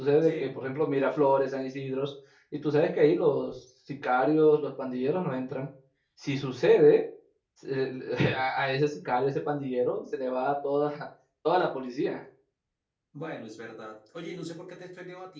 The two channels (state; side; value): identical; both; correlation 1.00